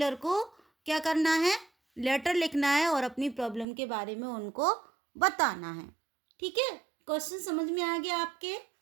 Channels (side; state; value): left; drops out; at 3.7 s